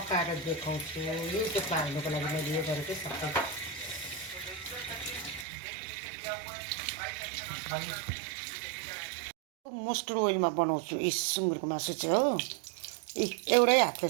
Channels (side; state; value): left; drops out; at 5.5 s